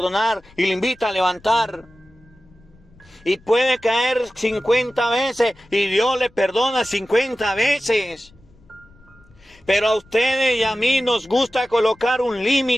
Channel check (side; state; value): left; noise; rumble, 28 dB below the sound